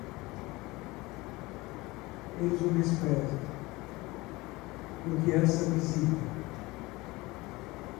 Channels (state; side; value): quieter; right; 21.6 dB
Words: Eles o desprezam. Porque essa visita,